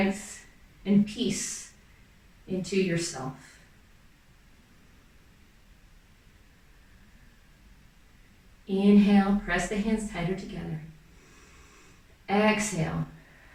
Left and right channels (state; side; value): identical; both; correlation 1.00